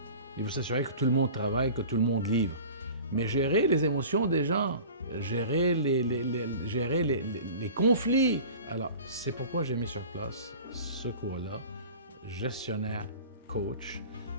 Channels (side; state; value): both; inverted; correlation -0.41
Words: Il veut s'assurer que tout le monde travaille, que tout le monde livre. Mais gérer les émotions des gens, gérer les conflits. Alors, c'est pourquoi j'ai mis sur place ce cours-là, gestionnaire coach,